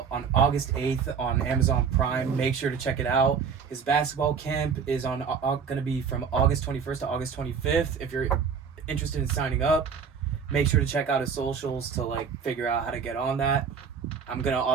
on August 8th on Amazon Prime. Make sure to check it out. His basketball camp is going to be from August 21st to August 25th. If you're interested in signing up, make sure to check out his socials to like figure out how to get on that. I'm going to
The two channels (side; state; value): left; quieter; 6.4 dB